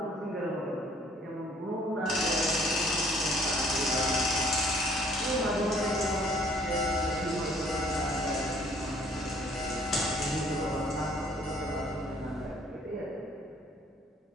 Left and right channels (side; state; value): both; normal; correlation 0.59